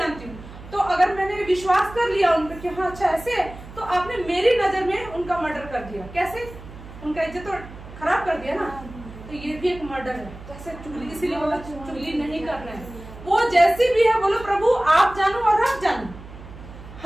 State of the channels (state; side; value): noise; right; hum, 16 dB below the sound